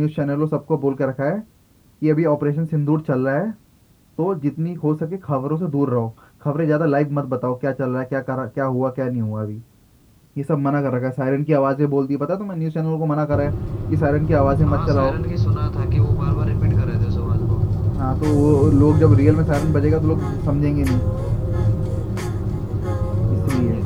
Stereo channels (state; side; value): identical; both; correlation 1.00